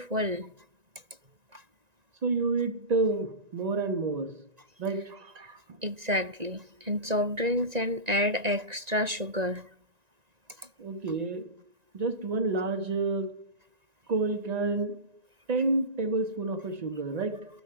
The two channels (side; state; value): left; late; 1.9 ms